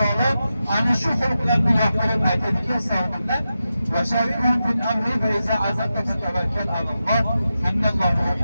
ana shu xulqlarni yoqtirib aytadiki, savollar va shari'un fil amri va iza azabta fatawakkal alalloh innalloha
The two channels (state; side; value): inverted; both; correlation -0.90